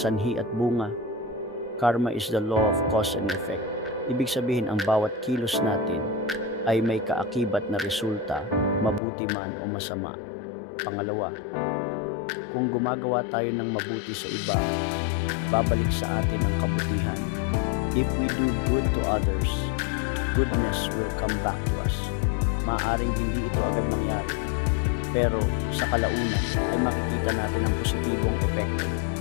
at bunga. Karma is the law of cause and effect. Ibig sabihin ang bawat kilos natin ay may kaakibat na resulta, mabuti man o masama. Pangalawa, kung gumagawa tayo ng mabuti sa iba, babalik sa atin ang kabutihan. If we do good to others, goodness will come back to us. Maaaring hindi ito agad mangyari, pero sa kalaunan ay makikita natin ang positibong epekto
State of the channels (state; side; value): drops out; right; at 9.0 s